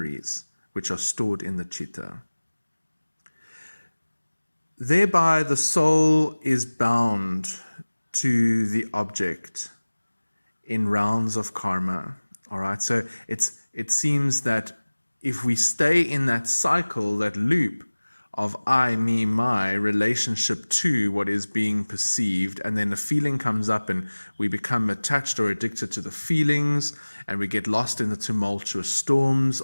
which are stored in the chitta. Thereby, the soul is bound to the object in rounds of karma. All right, so it seems that if we stay in that cycle, that loop of I, me, my relationship to what is being perceived, and then a feeling comes up and we become attached or addicted to the feelings, and we get lost in the tumultuous storms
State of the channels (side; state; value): both; inverted; correlation -1.00